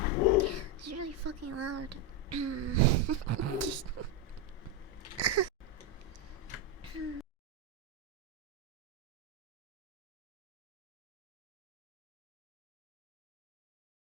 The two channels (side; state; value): both; normal; correlation 0.07